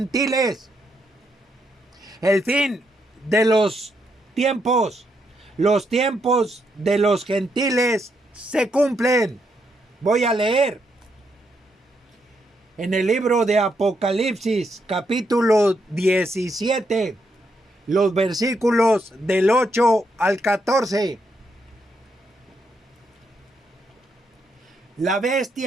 El fin de los tiempos de los gentiles se cumplen. Voy a leer en el libro de Apocalipsis, capítulo 17, los versículos del 8 al 14. La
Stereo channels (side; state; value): both; normal; correlation 0.79